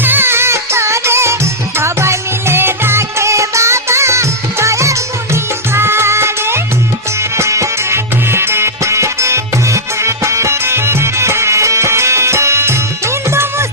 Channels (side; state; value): both; normal; correlation -0.09